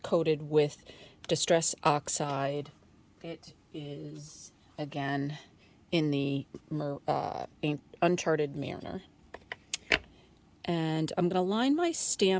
coated with Distress Oxide. It is, again, in the Uncharted Mariner. And I'm going to line my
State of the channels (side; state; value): both; identical; correlation 1.00